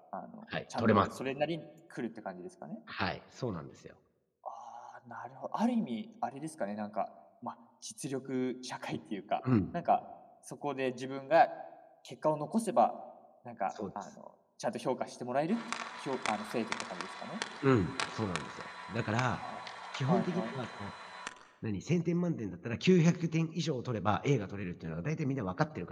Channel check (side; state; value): both; identical; correlation 1.00